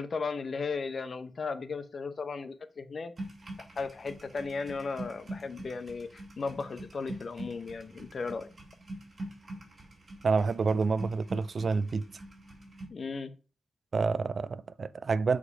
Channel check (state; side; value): normal; both; correlation 0.89